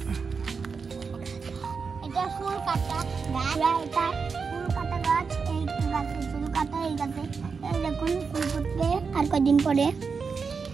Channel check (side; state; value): left; quieter; 5.3 dB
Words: এটা ফুল কাটা গাছ। এটা ফুল কাটা গাছ। এই গাছে ফুল কাটা, এই গাছে এই দেখুন ফুল ফুটবে আর কদিন পরে।